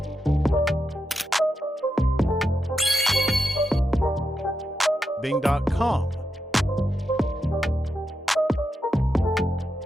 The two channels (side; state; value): both; normal; correlation 0.86